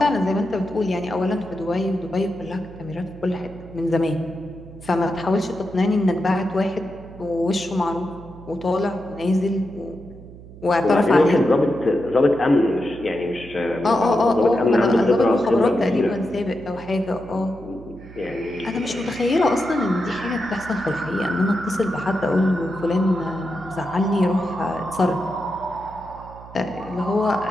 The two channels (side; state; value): right; noise; hum, 17 dB below the sound